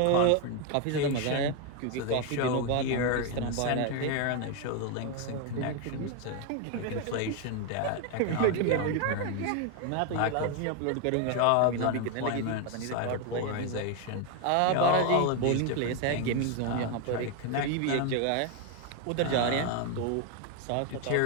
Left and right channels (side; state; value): both; different; correlation 0.01